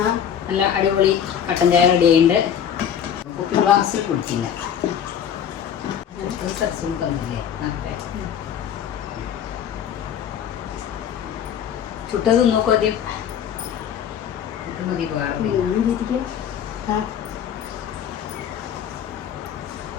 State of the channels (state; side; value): quieter; right; 8.8 dB